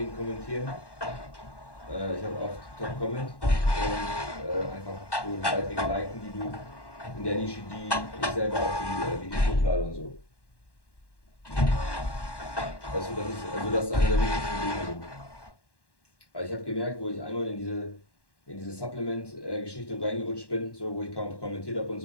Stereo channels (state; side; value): late; right; 1.1 ms